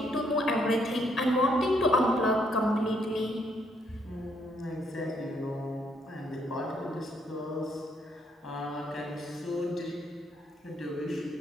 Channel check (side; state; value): both; normal; correlation 0.72